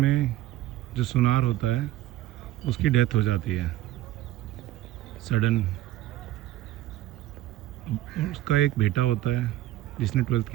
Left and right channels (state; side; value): quieter; left; 14.7 dB